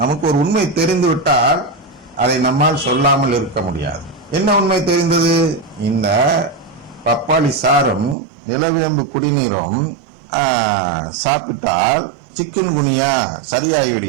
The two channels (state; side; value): drops out; left; at 8.2 s